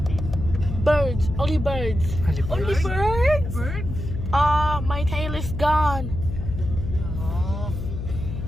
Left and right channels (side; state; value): left; noise; hum, 6 dB below the sound